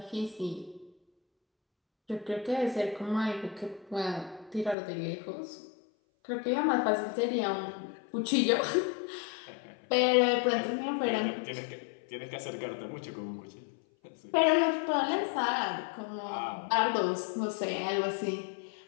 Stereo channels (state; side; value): drops out; right; at 4.8 s